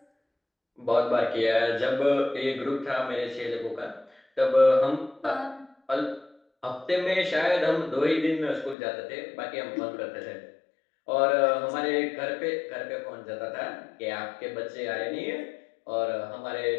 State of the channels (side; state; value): right; drops out; at 8.8 s